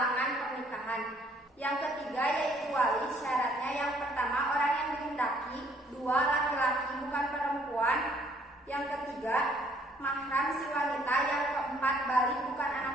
pernikahan. Yang ketiga yaitu wali. Syaratnya: yang pertama, orang yang dihendaki. 2. Laki-laki bukan perempuan. Yang ketiga, mahram si wanita. Yang keempat, balik bukan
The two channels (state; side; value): normal; both; correlation 0.63